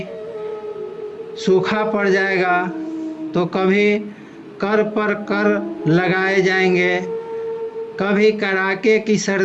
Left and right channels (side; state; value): both; identical; correlation 1.00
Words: सूखा पड़ जाएगा, तो कभी कर पर कर लगाए जाएंगे, कभी कड़ाके की